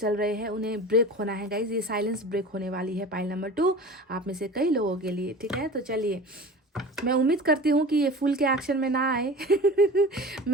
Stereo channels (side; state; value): both; normal; correlation 0.36